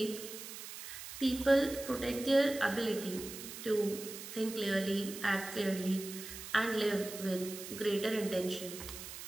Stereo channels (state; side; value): noise; right; hiss, 10 dB below the sound